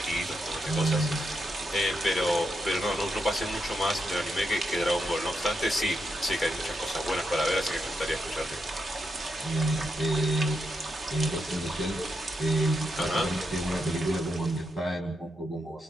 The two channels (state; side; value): normal; both; correlation 0.83